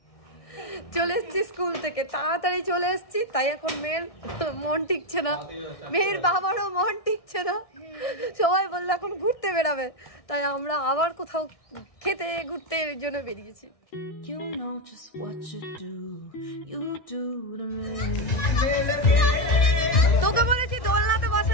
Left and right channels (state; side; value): late; right; 1.6 ms